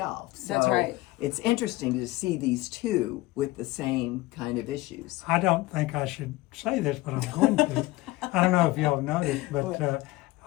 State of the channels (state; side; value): quieter; right; 19.5 dB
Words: So That's right. It's interesting to see these two with the same kind of issues. I don't think I should say this, but I'm going to. I don't know if y'all noticed, but